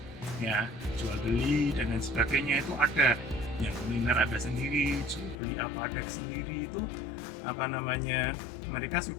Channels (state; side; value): drops out; right; at 5.4 s